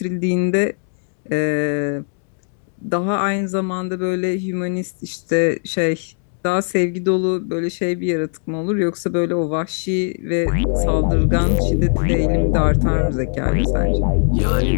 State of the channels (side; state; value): right; silent; 58 dB below the other